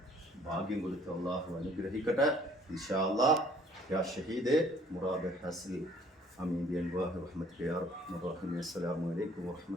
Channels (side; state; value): both; normal; correlation 0.58